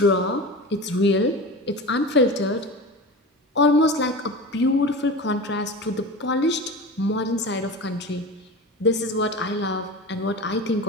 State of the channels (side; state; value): both; normal; correlation 0.30